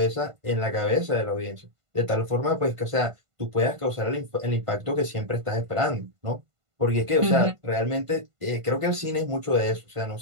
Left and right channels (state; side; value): late; left; 1.5 ms